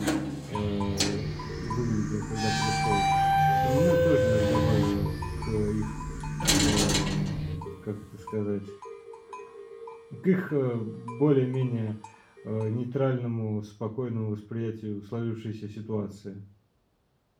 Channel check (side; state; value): both; identical; correlation 1.00